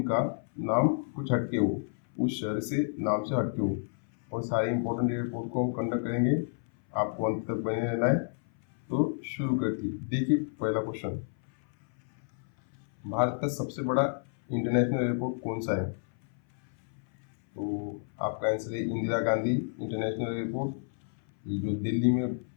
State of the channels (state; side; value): silent; right; 58 dB below the other